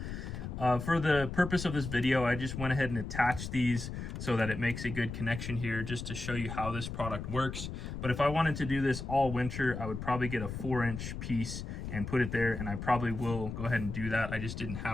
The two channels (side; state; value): left; noise; rumble, 7 dB below the sound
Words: For the purpose of this video, I just went ahead and attached these so that it makes a good connection here, just to show you how this product works. But if I wanted to do this all winter, I would probably get a 4-inch piece and put it there, and I probably will go ahead and do that. I just didn't